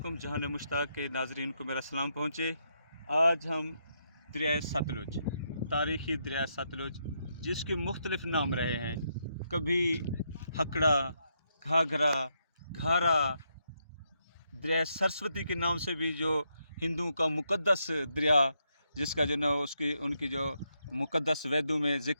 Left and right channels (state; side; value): inverted; both; correlation -0.79